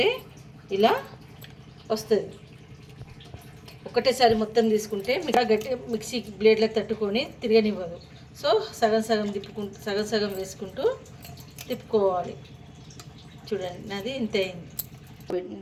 ఇలా వస్తుంది. ఒకటేసారి మొత్తం తీసుకుంటే గట్టి మిక్సీ బ్లేడ్లకు తట్టుకొని తిరగనివ్వదు. సో సగం సగం వేసుకుంటూ తిప్పుకోవాలి. చూడండి, నాది ఇంత అయింది.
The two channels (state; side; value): identical; both; correlation 1.00